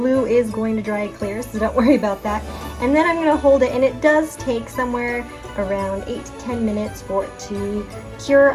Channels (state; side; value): identical; both; correlation 1.00